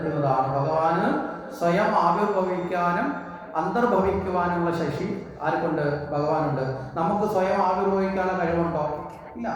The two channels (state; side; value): identical; both; correlation 1.00